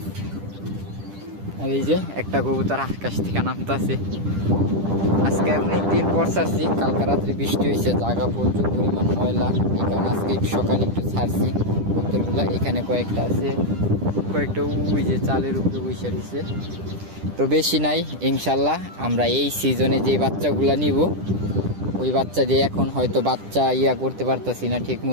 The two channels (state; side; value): late; left; 10 ms